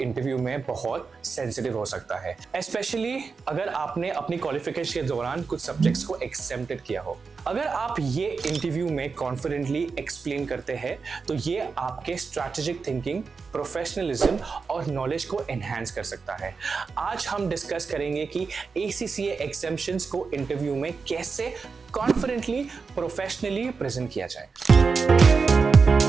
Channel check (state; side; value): quieter; left; 4.9 dB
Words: interview में बहुत सेंसिटिव हो सकता है, स्पेशली अगर आपने अपनी क्वालिफिकेशन के दौरान कुछ सब्जेक्ट्स को एग्जेम्प्टेड किया हो। अगर आप ये इंटरव्यू में कॉन्फिडेंटली एक्सप्लेन करते हैं तो ये आपके स्ट्रैटेजिक थिंकिंग, प्रोफेशनलिज्म और नॉलेज को एनहांस कर सकता है। आज हम डिस्कस करेंगे कि ACCA एग्जाम्शंस को इंटरव्यू में कैसे कॉन्फिडेंटली, प्रोफेशनली प्रेजेंट किया जाए।